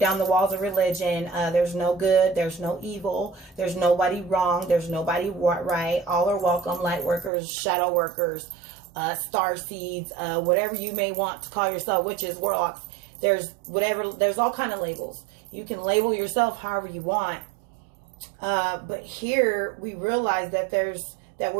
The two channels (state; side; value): drops out; left; at 7.3 s